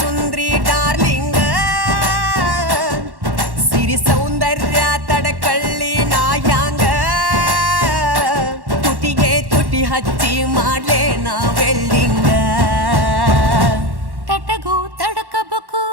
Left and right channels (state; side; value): late; left; 1.1 ms